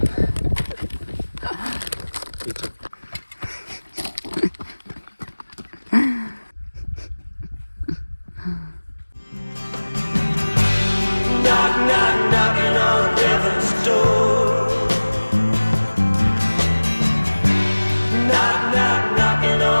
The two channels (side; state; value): both; inverted; correlation -1.00